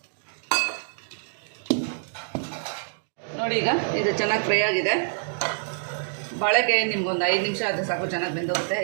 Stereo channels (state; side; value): silent; left; digital silence